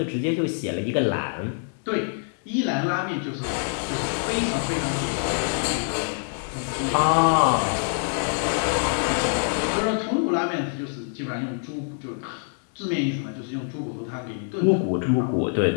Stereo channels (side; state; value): right; silent; digital silence